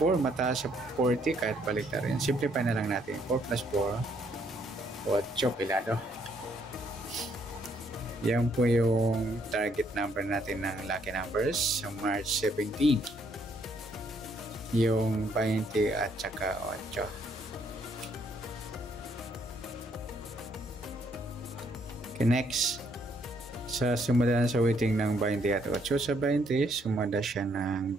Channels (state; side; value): normal; both; correlation 0.69